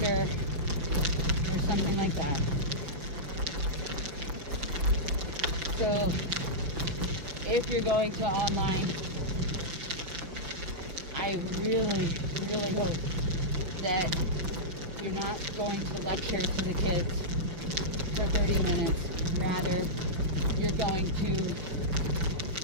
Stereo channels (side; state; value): left; late; 5.9 ms